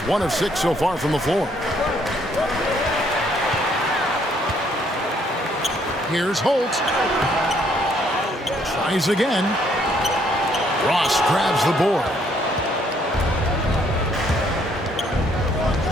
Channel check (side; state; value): both; normal; correlation 0.67